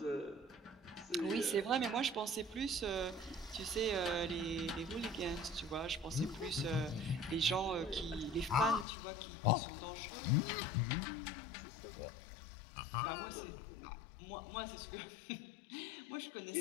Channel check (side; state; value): right; drops out; at 8.8 s